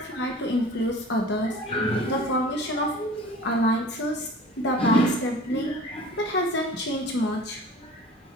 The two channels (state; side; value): normal; both; correlation 0.42